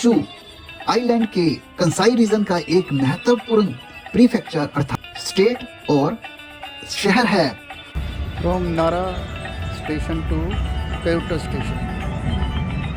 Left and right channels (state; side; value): identical; both; correlation 1.00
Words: आइलैंड के कंसाई रीजन का एक महत्वपूर्ण प्रीफेक्चर अर्थात स्टेट और शहर है। From Nara station to Kyoto station.